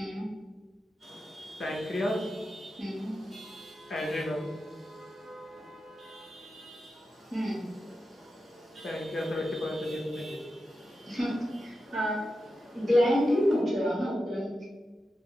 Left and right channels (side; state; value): both; normal; correlation 0.90